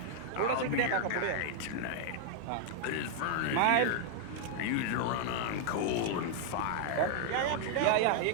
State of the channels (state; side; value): different; both; correlation 0.00